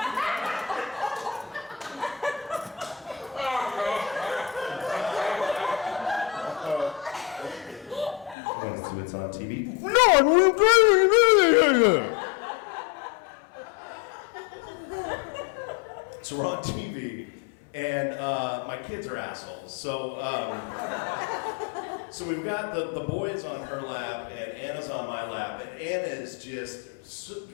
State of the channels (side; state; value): right; drops out; at 8.3 s